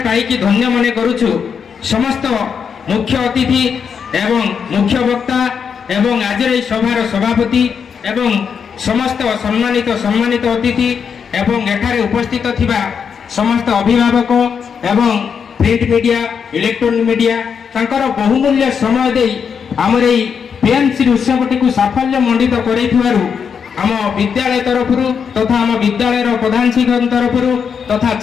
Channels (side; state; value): right; quieter; 6.7 dB